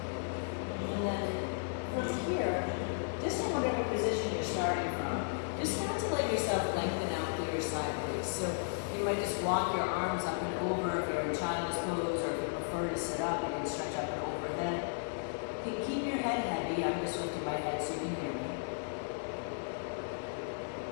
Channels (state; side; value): silent; right; 55 dB below the other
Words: And then from here, just in whatever position you're starting from, just start to let yourself lengthen out through your side waist. So you might just walk your arms up and over if you're in child's pose, or if you prefer to sit up, you can stretch up and overhead. Keep your head heavy. I'm just lifting my head so you can hear me.